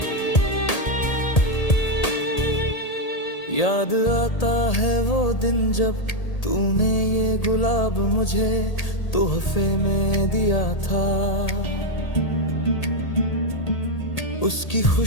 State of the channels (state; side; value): late; right; 1.8 ms